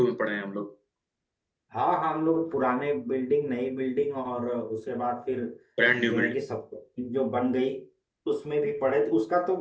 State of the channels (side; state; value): both; identical; correlation 1.00